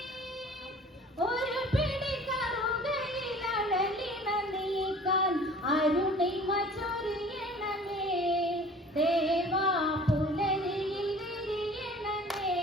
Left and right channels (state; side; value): normal; both; correlation 0.47